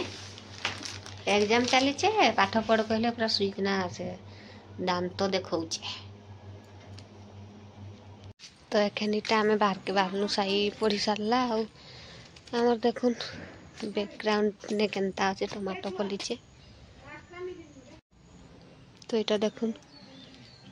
एग्जाम चली छे पाठ पढ़ कहले पूरा सुइकना से दांत तो देखौचे। तो एखनीटा आमे बाहर के बाहरनु साई पढ़ी सारला आउ हमर देखुन बैकग्राउंड ने केनता আছে टमाटो फलिचे। तो এটা দেখুন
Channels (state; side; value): identical; both; correlation 1.00